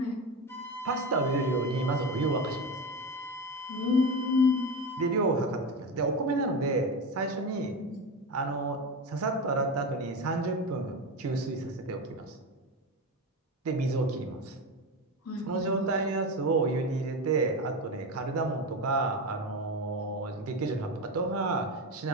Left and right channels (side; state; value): both; normal; correlation 0.20